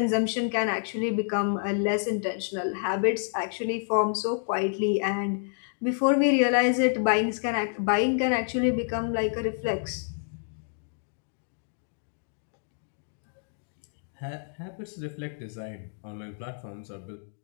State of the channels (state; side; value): silent; right; digital silence